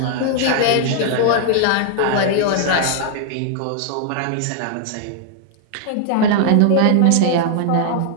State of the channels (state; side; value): different; both; correlation 0.00